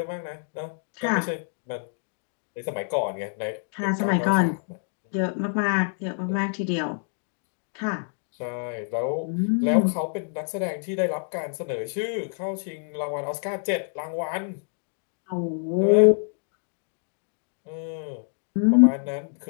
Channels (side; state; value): right; silent; 60 dB below the other